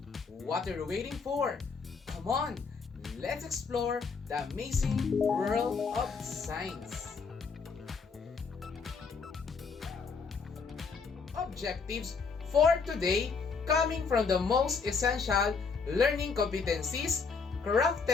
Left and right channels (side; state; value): right; quieter; 5.1 dB